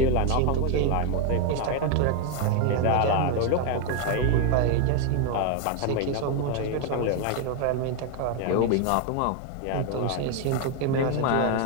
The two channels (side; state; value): both; different; correlation 0.01